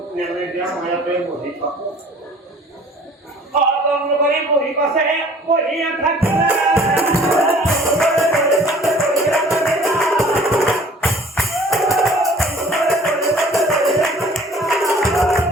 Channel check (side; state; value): both; normal; correlation 0.51